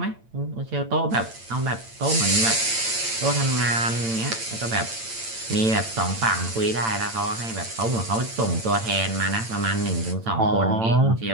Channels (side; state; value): left; late; 8.9 ms